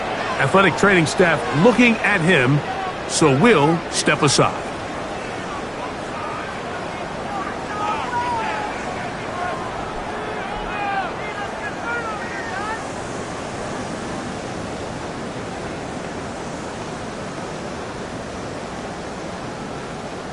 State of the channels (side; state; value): both; identical; correlation 1.00